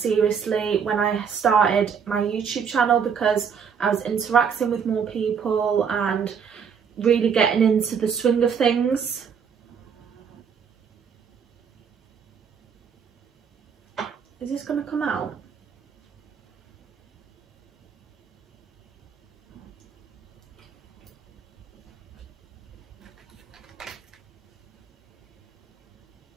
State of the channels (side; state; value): left; quieter; 6.8 dB